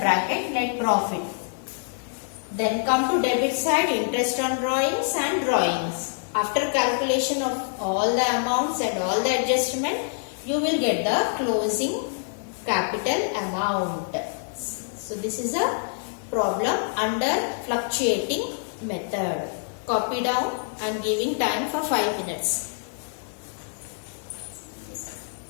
net profit. Then come to debit side, interest on drawings and drawings. After calculation of all the amounts and all the adjustment, you will get the closing capital amount. So this is a problem under fluctuating method. Copy down and giving time for 5 minutes.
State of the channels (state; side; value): silent; right; digital silence